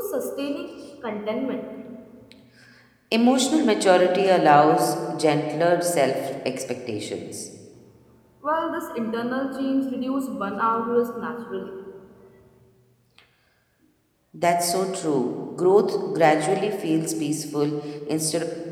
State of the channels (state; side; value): identical; both; correlation 1.00